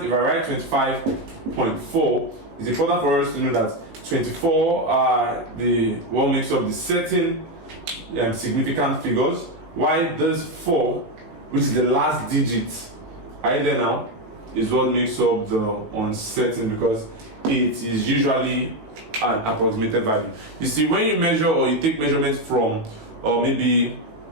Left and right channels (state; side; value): late; left; 18 ms